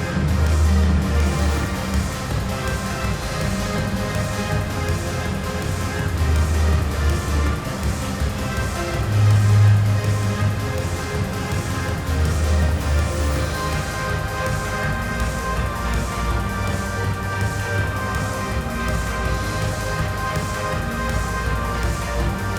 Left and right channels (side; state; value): both; identical; correlation 1.00